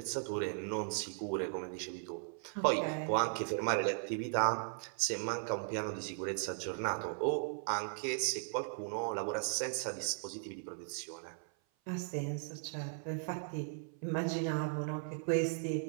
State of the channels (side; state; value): left; silent; 53 dB below the other